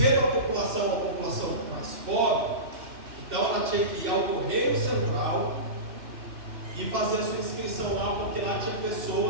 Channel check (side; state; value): left; late; 2.4 ms